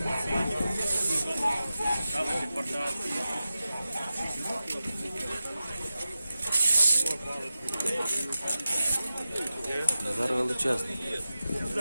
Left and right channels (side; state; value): both; inverted; correlation -0.93